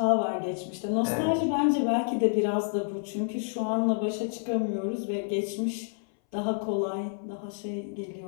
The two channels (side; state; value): right; silent; 59 dB below the other